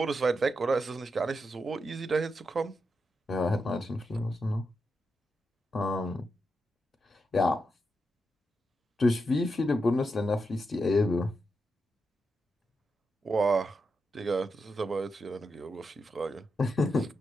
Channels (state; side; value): normal; both; correlation 0.86